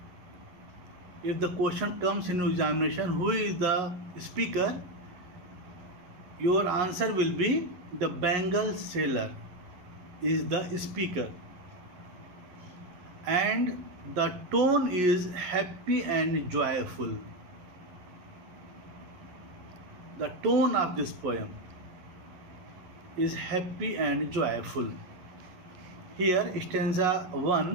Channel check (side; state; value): left; late; 11 ms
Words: If the question comes in examination, who is the speaker? Your answer will be the Bengal sailor is the speaker. And the tone is happy and joyful. The tone of this poem is happy and joyful. Here, stanza